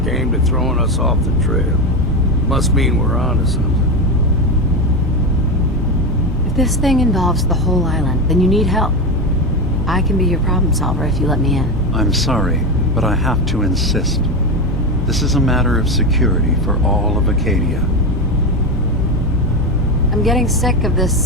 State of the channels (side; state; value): both; normal; correlation 0.16